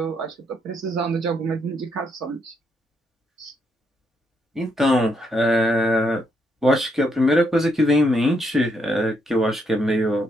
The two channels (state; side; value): normal; both; correlation 0.76